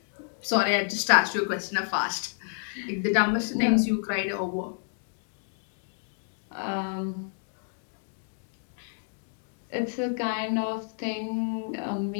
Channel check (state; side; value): silent; right; digital silence